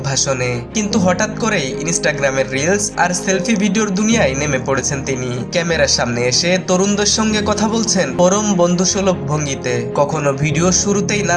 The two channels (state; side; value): identical; both; correlation 1.00